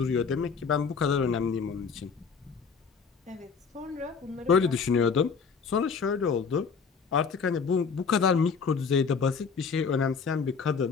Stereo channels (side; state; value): right; quieter; 5.6 dB